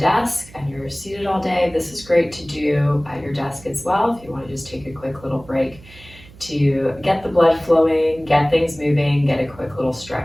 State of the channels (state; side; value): noise; right; hum, 22 dB below the sound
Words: and you're seated all day, this is great to do at your desk as well. If you want to just take a quick little break to get the blood flowing, get things moving, get a quick little